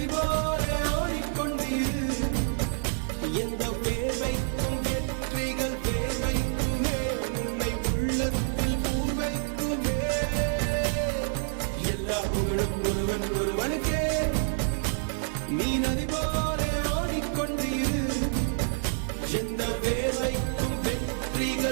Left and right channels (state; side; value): silent; left; digital silence